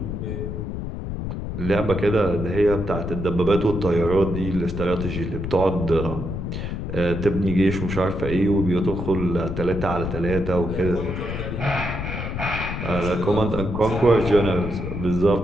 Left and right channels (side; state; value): left; noise; rumble, 5 dB below the sound